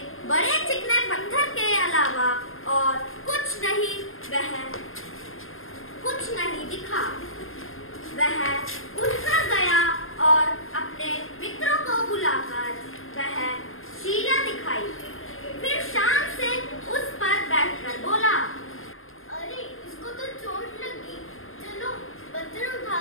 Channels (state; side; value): late; right; 0.60 ms